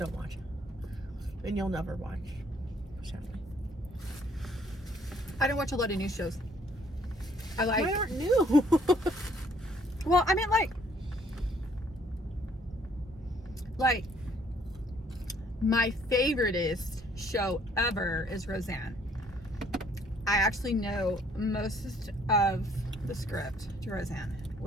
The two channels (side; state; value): both; normal; correlation 0.63